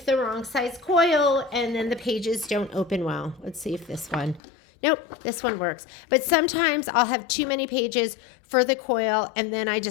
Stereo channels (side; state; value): right; drops out; at 4.4 s